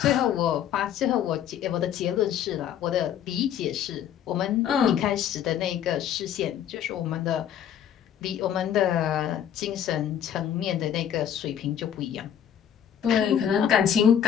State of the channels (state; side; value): quieter; right; 9.6 dB